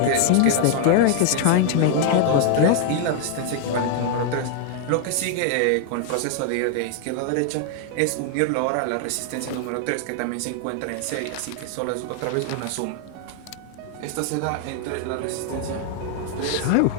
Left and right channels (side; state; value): both; different; correlation 0.00